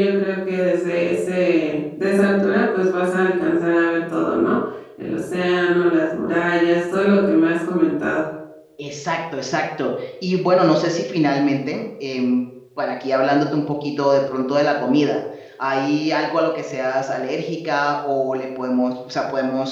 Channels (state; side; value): identical; both; correlation 1.00